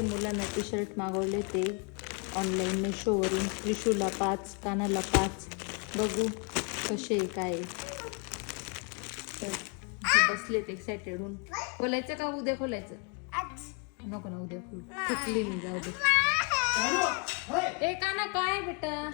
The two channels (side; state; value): right; quieter; 35.4 dB